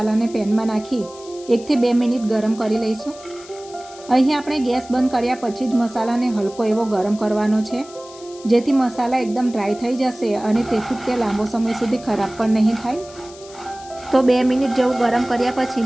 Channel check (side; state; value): left; noise; hiss, 20 dB below the sound